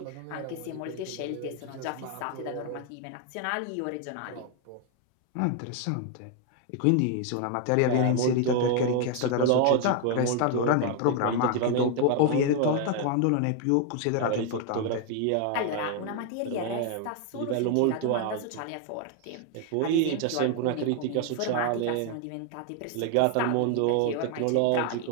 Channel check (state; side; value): different; both; correlation 0.01